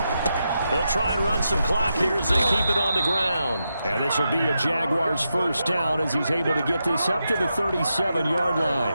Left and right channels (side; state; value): both; inverted; correlation -0.86